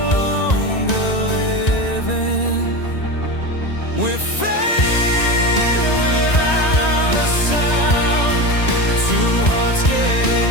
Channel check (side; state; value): right; late; 1.9 ms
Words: longer living. We're fading without a sound, two hearts